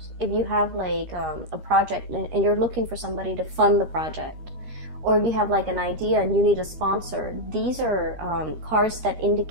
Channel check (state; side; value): late; left; 13 ms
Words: if you have like a project and you're looking for somebody to fund the project, or if you have like an idea and you need a sponsor, these are cards that